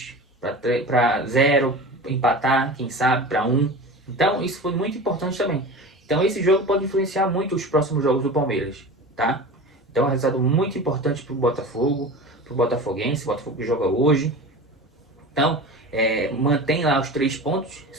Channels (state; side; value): normal; both; correlation 0.33